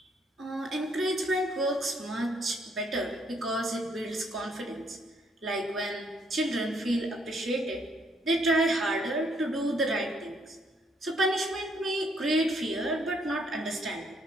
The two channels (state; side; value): normal; both; correlation 0.70